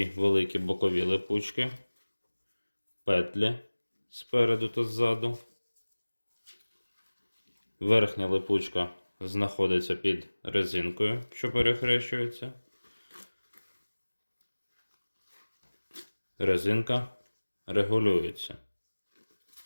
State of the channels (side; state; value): both; inverted; correlation -1.00